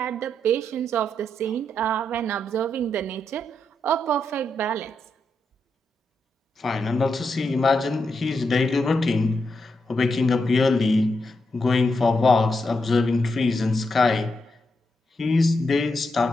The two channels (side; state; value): both; normal; correlation 0.83